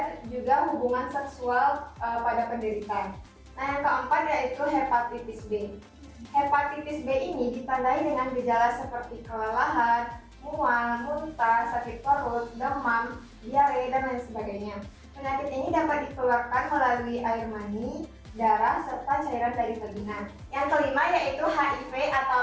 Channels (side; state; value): both; identical; correlation 1.00